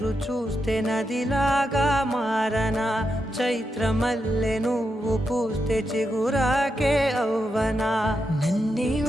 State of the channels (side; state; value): both; normal; correlation 0.85